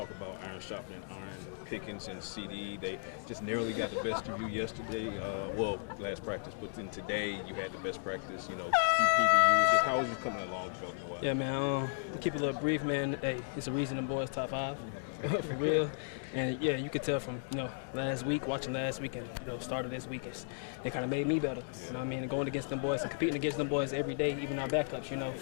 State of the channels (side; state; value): right; silent; digital silence